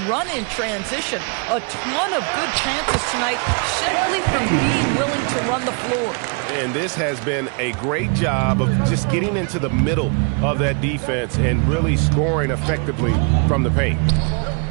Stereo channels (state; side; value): quieter; left; 37.1 dB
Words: run in transition. A ton of good chances tonight simply from being willing to run the floor. And this has been a great job of just getting into the middle of that defense and really scoring effectively from the paint.